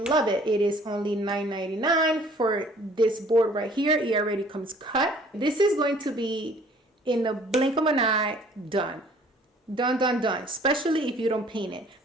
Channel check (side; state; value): both; normal; correlation 0.55